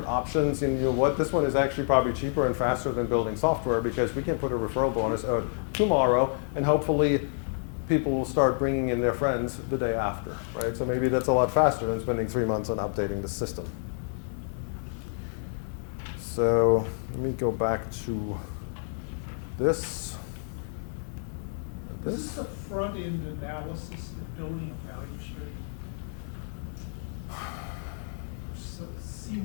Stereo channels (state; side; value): silent; right; 58 dB below the other